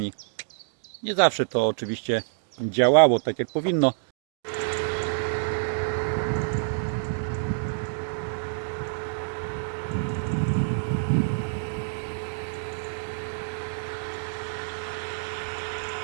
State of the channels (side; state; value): left; silent; digital silence